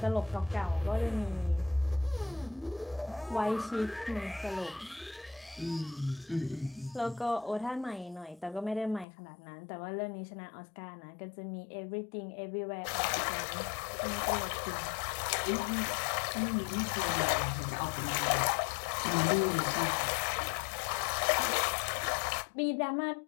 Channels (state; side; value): drops out; right; at 9.1 s